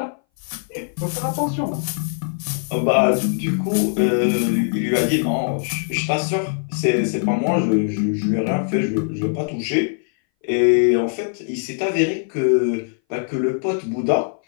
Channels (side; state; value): right; silent; 61 dB below the other